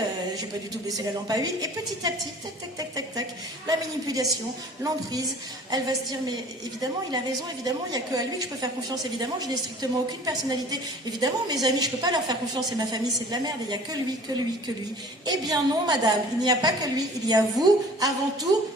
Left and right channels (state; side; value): normal; both; correlation 0.47